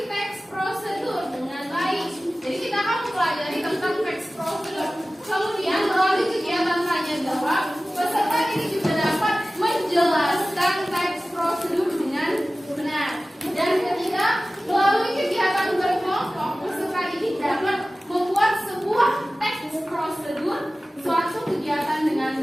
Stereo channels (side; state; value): both; normal; correlation 0.96